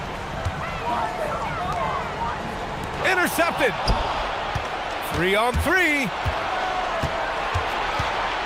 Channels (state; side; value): identical; both; correlation 1.00